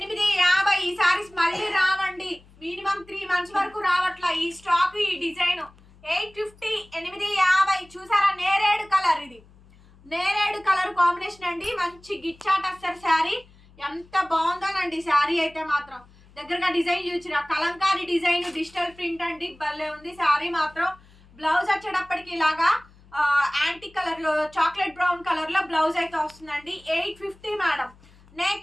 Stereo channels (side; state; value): left; noise; hum, 26 dB below the sound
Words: ఈ సారీస్ మళ్ళీ రావండి. మినిమం 3 మంత్స్ వరకు రావట్లా ఈ స్టాక్, ఈ డిజైన్. 850. 850. చూసారా, నేరేడు కలర్. ఇది నేరేడు కలర్ కాంబినేషన్ అండి. మంచి గిచ్చా టస్సర్ శారీ. ఎంత బాగుందోనండి శారీ అయితే మాత్రం. దగ్గరగా డిజైన్ చూసిన కలంకారీ డిజైన్ డిజిటల్ ప్రింట్ అండి. భలే ఉంది శారీ మాత్రం. బ్లౌజ్ వచ్చేటప్పటికి ఇలాగా యాంటిక్ కలర్ లో చాక్లెట్ బ్రౌన్ కలర్ లో బ్లౌజ్ అయితే వస్తుందండి. 850 మేడం.